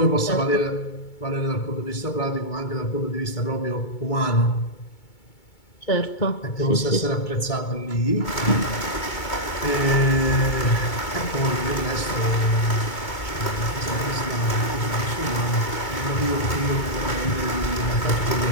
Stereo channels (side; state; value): right; late; 2.2 ms